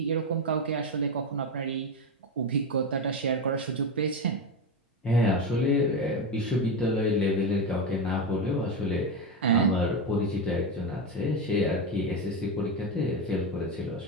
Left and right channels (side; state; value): both; normal; correlation 0.14